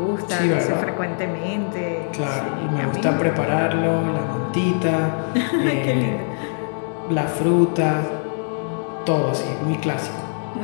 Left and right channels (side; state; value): right; silent; 64 dB below the other